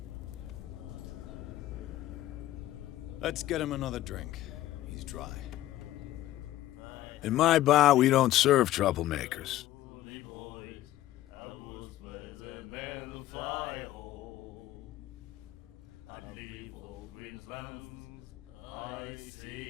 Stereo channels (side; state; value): right; quieter; 14.5 dB